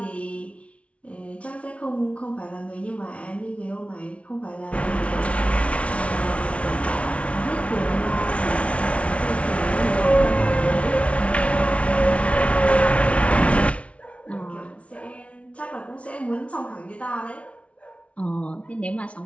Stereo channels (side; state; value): right; late; 0.063 ms